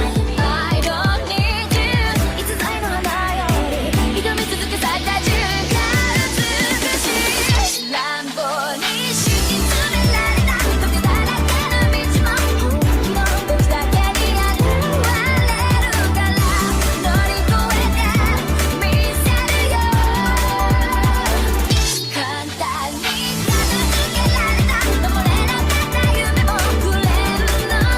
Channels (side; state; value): both; identical; correlation 1.00